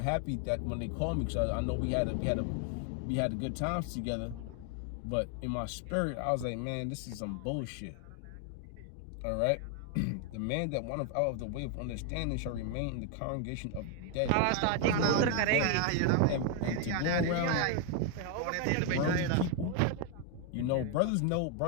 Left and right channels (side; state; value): both; different; correlation 0.01